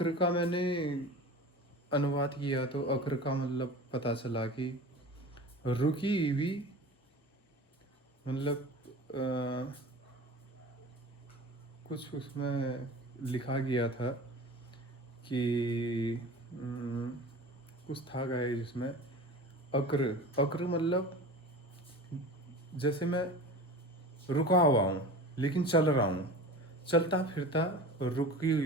का मैंने अनुवाद किया तो अक्र का मतलब पता चला कि रुकी हुई, मतलब कुछ उसमें लिखा गया था कि कुछ था गाइस जिसमें अक्र अक्र मतलब जैसे मैं रुका हुआ हूँ लेकिन चल रहा हूँ, चलता फिरता रुकी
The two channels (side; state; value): both; normal; correlation 0.35